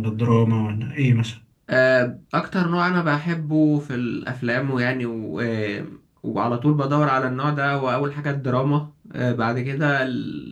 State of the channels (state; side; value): identical; both; correlation 1.00